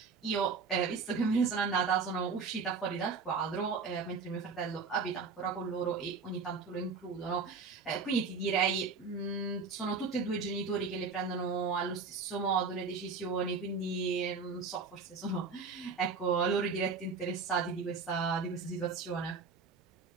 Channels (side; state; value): left; quieter; 4.9 dB